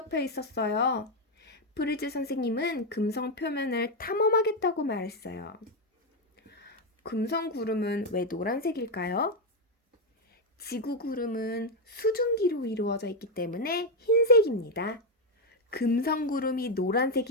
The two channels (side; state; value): both; normal; correlation 0.05